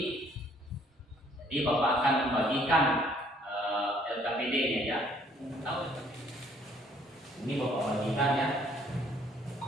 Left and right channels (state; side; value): normal; both; correlation 0.62